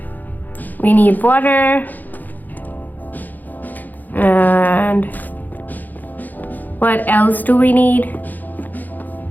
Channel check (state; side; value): late; right; 0.084 ms